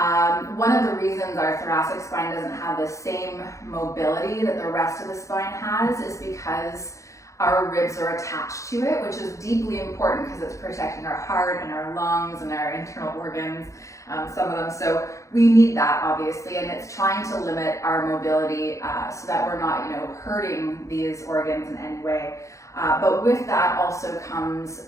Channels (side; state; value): right; late; 0.15 ms